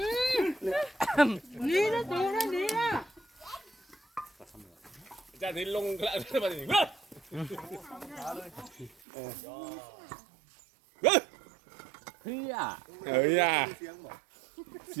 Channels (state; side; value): drops out; left; at 8.9 s